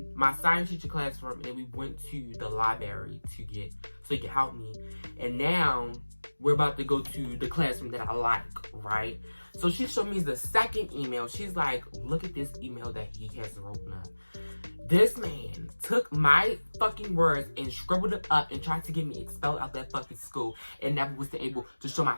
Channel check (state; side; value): inverted; both; correlation -1.00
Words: my science teacher classroom, and we went to the library so he could help me. And now we're about to go to the classroom that I like, right? So she showed me the second email. She's like, look at this email that he has written up. This man took my fucking words and scribbled it up and tried to get me expelled out that fucking school and never was able to show my